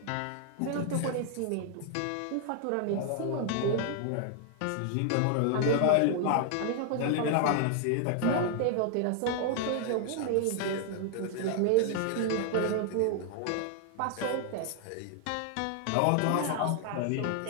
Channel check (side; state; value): both; different; correlation 0.00